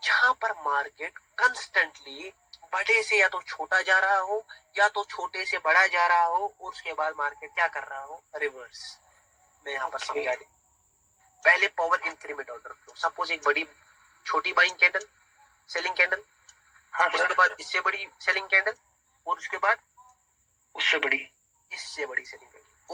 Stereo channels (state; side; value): identical; both; correlation 1.00